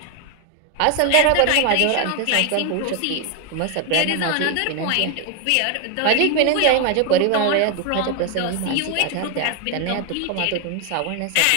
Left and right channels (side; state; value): both; different; correlation 0.01